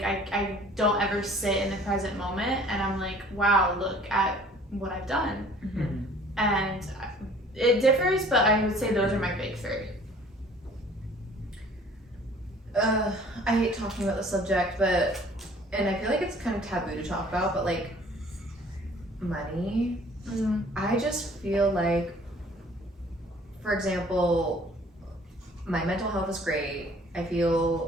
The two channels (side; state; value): both; normal; correlation 0.52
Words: I don't ever sit in the present moment, and I'm like, wow, look at what I've done. And it differs, but I would say those are my big three. I hate talking about the subject, and I feel like it's kind of taboo to talk about, but, like, money. I just feel like, for example, my mental health is great. I